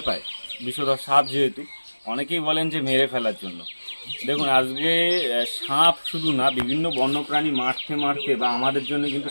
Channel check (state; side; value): inverted; both; correlation -1.00